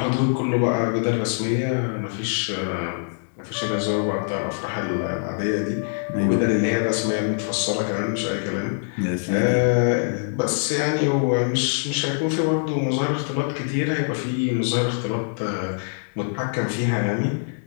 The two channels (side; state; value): right; silent; digital silence